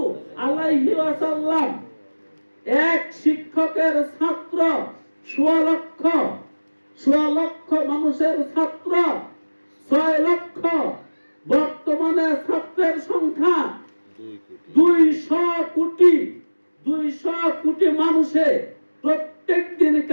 আলাইহি ওয়াসাল্লাম। এক শিক্ষকের ছাত্র 1.5 লক্ষ, 1.5 লক্ষ মানুষের ছাত্র 6 লক্ষ। বর্তমানে ছাত্রের সংখ্যা 200 কোটি। 200 কোটি মানুষে প্রত্যেক দিন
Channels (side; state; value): both; inverted; correlation -1.00